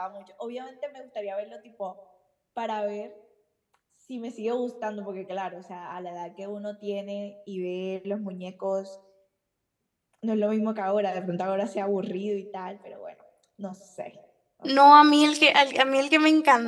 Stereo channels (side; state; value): both; identical; correlation 1.00